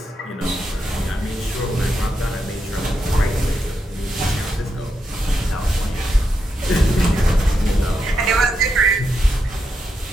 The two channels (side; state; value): both; normal; correlation 0.84